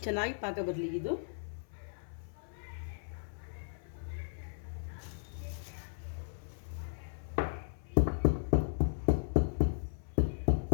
ಚೆನ್ನಾಗಿ ಪಾಕ ಬರಲಿ. ಇದು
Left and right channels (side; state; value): right; silent; 54 dB below the other